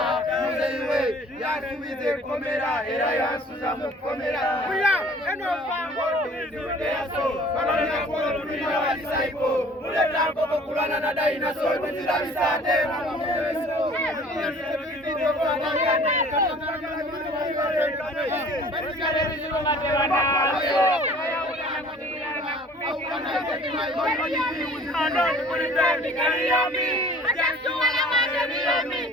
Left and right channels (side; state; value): both; normal; correlation 0.50